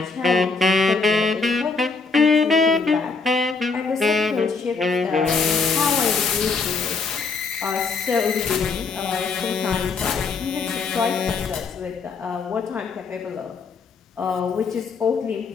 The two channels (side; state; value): right; quieter; 4.6 dB